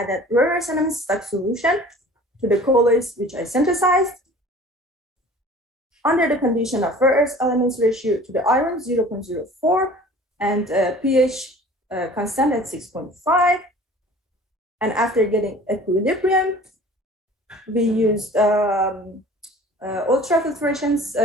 rare earth elements stock solution to the colloids which I synthesized under the condition of rare earth elements ratio to the iron 0.04 and pH constant at 6.5. And after getting equilibrium, we used ultrafiltration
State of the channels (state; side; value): normal; both; correlation 0.45